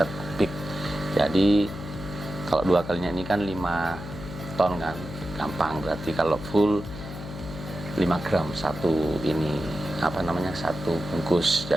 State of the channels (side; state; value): left; noise; hum, 11 dB below the sound